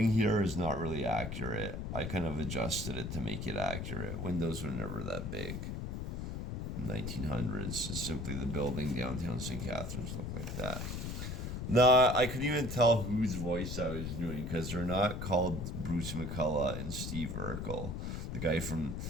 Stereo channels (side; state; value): left; noise; rumble, 4 dB below the sound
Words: here is not really accurate. I kind of adjusted it to make it accurate. Windows were never that big. In the 1900s, it's simply the building downtown St. Catharines looked like that. Nah, I couldn't even tell whose voice I was doing because they're not called Bruce McCullough and Steve Urkel. The guy from,